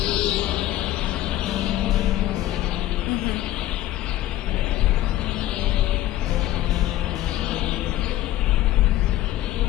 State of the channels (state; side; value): quieter; right; 14.5 dB